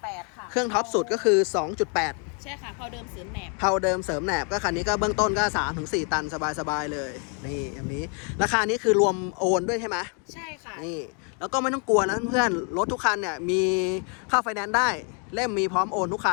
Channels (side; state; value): right; quieter; 39.4 dB